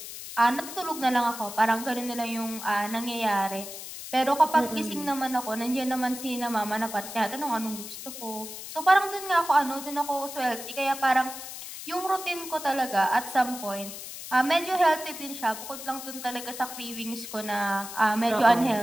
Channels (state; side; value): noise; left; hiss, 10 dB below the sound